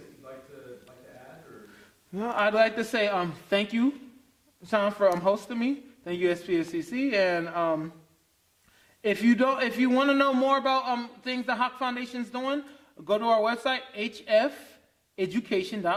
you'd like to add? Or? No, I'd like to say thank you, Sean, for hosting me. Thank you, SPSCC. And if you want to know more about things the Hawk Foundation's doing, go to our website,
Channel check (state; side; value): identical; both; correlation 1.00